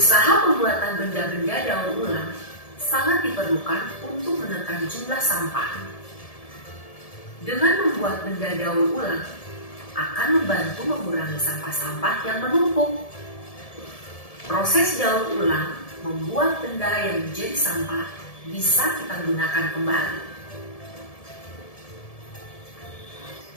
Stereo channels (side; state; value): right; late; 1.7 ms